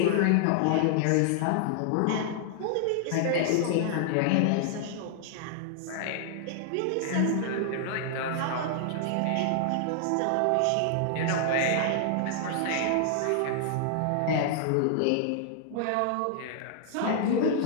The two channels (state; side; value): different; both; correlation -0.01